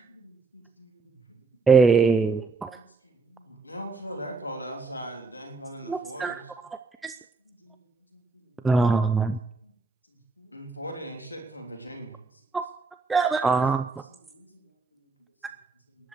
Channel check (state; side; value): quieter; left; 4.3 dB